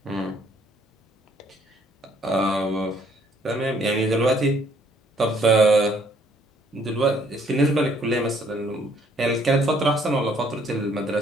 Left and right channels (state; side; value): normal; both; correlation 0.64